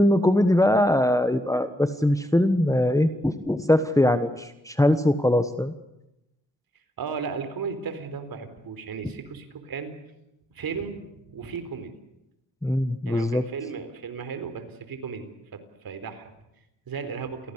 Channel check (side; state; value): both; normal; correlation 0.80